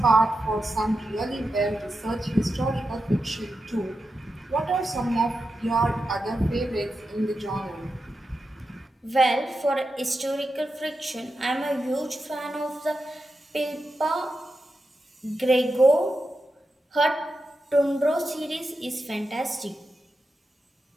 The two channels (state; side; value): normal; both; correlation 0.89